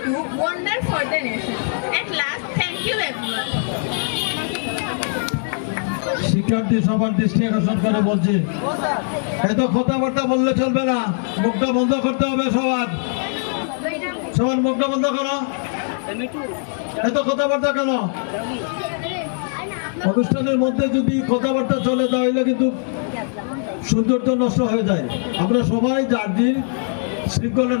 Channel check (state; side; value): silent; right; 65 dB below the other